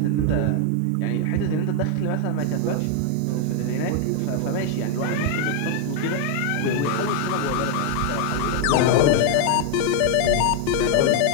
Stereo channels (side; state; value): both; different; correlation 0.00